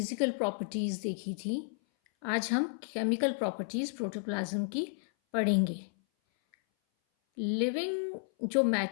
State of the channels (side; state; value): right; silent; 56 dB below the other